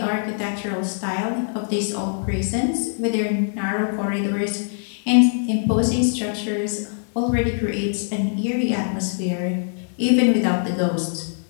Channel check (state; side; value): silent; right; 64 dB below the other